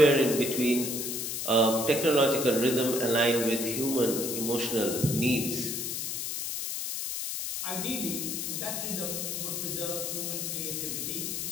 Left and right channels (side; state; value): left; noise; hiss, 3 dB below the sound